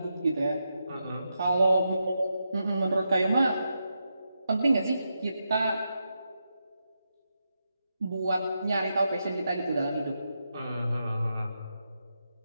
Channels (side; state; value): both; inverted; correlation -0.86